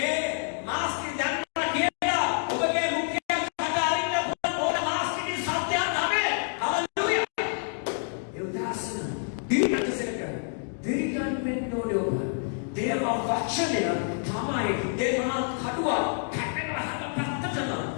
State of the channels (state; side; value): silent; right; 59 dB below the other